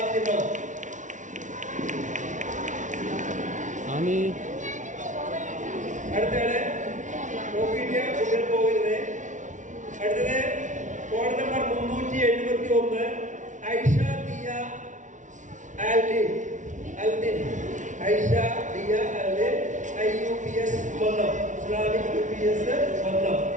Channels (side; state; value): left; late; 0.37 ms